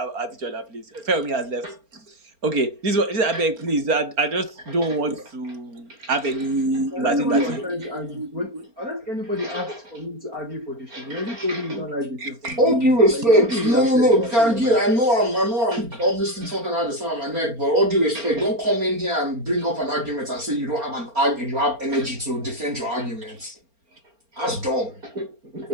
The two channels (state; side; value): late; left; 4.3 ms